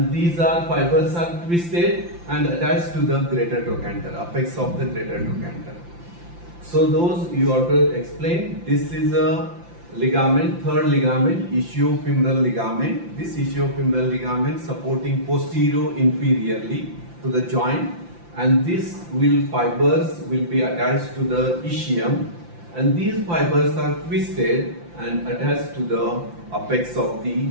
these are fibers are twisted and attached to the greater trochanter, apex of the greater trochanter. So those you have to explain. This is a ligament, third ligament, ischiofemoral ligament. This ischiofemoral ligament supporting posterior inferiorly to the joint, and these fibers will be attached to the ischium, and these fibers are twisted and attached to the apex of the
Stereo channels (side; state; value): left; late; 5.8 ms